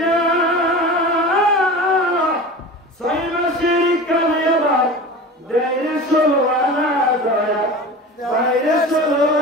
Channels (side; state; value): both; normal; correlation 0.33